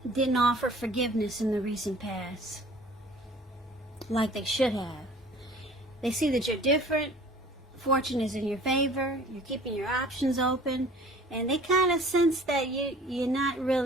didn't offer forgiveness in the recent past like they should have. They see that you're different. Fortune is in your favor. You're keeping your options open. And they kind of sense that you're not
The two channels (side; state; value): both; normal; correlation 0.49